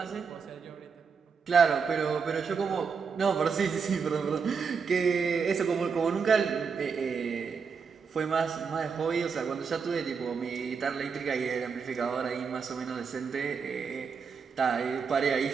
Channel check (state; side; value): quieter; left; 5.7 dB